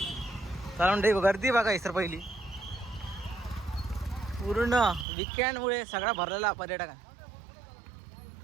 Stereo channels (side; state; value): left; drops out; at 5.1 s